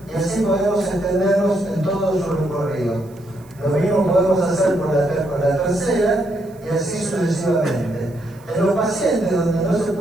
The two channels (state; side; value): noise; right; hiss, 29 dB below the sound